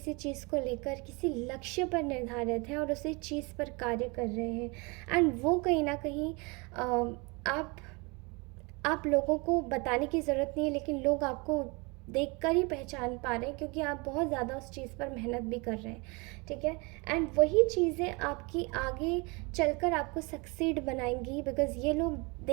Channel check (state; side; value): quieter; left; 28.5 dB